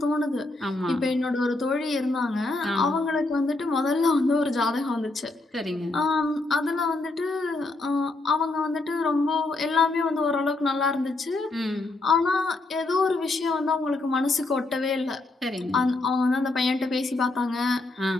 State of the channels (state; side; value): quieter; right; 3.1 dB